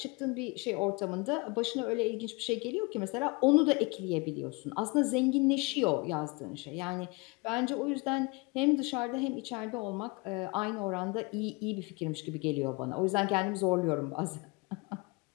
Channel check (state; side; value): quieter; right; 27.3 dB